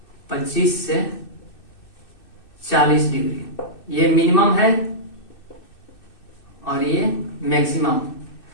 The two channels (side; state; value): right; late; 2.6 ms